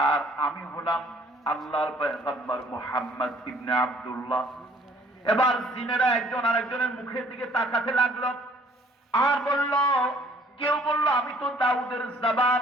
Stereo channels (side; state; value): both; normal; correlation 0.58